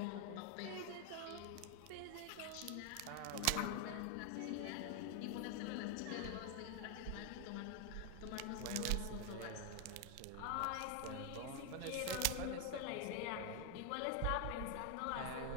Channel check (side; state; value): both; different; correlation 0.01